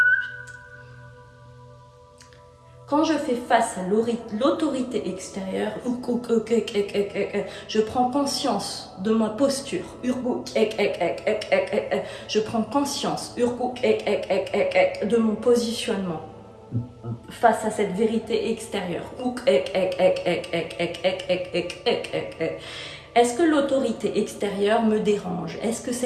Quand je fais face à l'autorité extérieure, je prends conscience de ma posture. Je prends conscience de mon positionnement face à cette vérité extérieure. Est-ce que l'autorité extérieure me dérange? Est-ce que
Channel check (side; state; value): both; identical; correlation 1.00